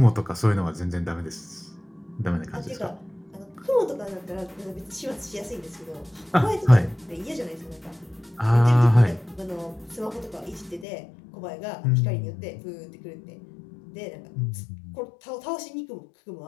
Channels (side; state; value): right; drops out; at 10.9 s